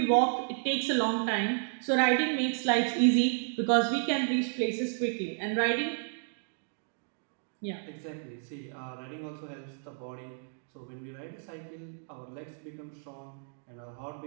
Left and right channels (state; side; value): silent; left; digital silence